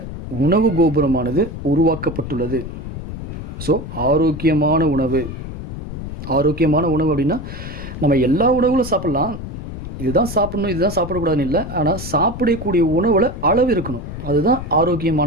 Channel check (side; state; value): left; noise; rumble, 9 dB below the sound